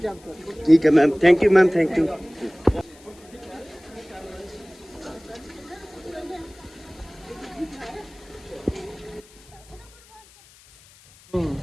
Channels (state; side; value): noise; left; hiss, 25 dB below the sound